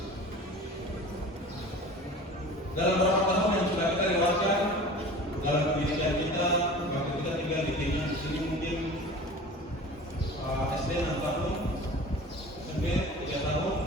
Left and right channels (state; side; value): normal; both; correlation 0.39